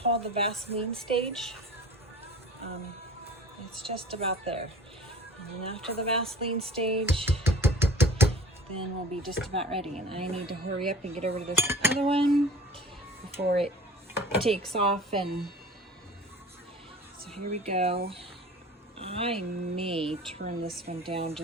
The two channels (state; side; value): normal; both; correlation 0.44